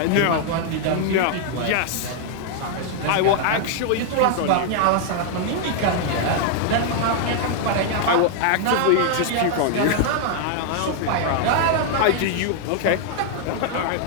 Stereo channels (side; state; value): both; different; correlation 0.00